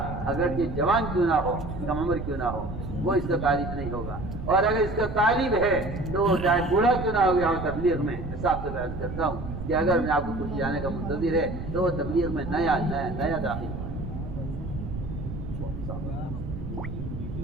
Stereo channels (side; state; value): right; noise; rumble, 7 dB below the sound